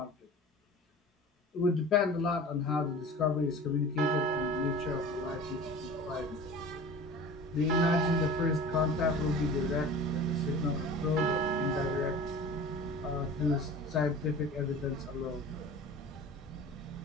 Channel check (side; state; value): both; normal; correlation 0.39